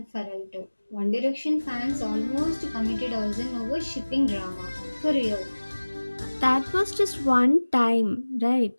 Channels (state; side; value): inverted; both; correlation -1.00